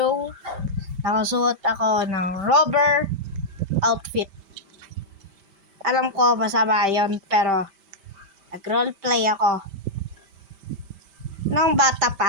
nakasuot ako ng rubber outfit. Alam ko masama yun, pero nag-roleplay ako nung bata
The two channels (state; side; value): late; left; 5.1 ms